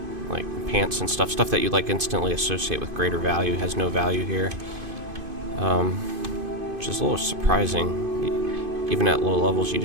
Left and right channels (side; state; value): left; late; 2.5 ms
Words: like pants and stuff that you like instantly associate with greater value, has no value here. Which is a little surprising. Even at low levels,